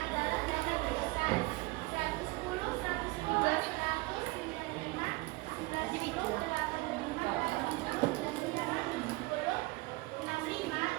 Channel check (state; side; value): quieter; left; 22.8 dB